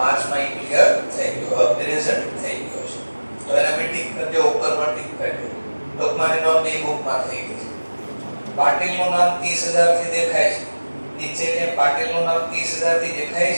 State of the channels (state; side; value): inverted; both; correlation -1.00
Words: ઈ ક્લિયર થઈ ગયો, પ્રેઝન્ટ થઈ ગયો છે. તો એના બી ટિક કરી દો, ઉપર પર ટિક કરી દો. ટૂંકમાં નોંધ બી બુકમાં થઈ ગઈ છે. પાટીલનું નામ 30000 થી દેખાય છે. નીચે કે પાટીલનું નામ 30000 થી દેખાય